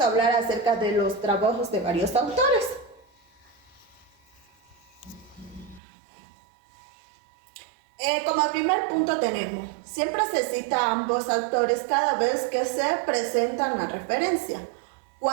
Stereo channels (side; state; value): left; drops out; at 5.8 s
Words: hablar acerca de los trabajos de varios autores. Como primer punto tenemos, siempre se cita a ambos autores cada vez que se presentan la referencia.